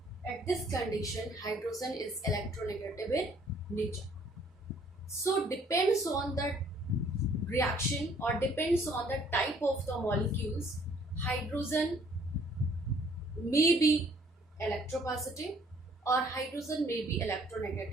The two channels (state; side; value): normal; both; correlation 0.60